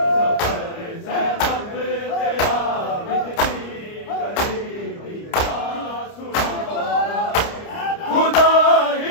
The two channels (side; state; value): right; late; 29 ms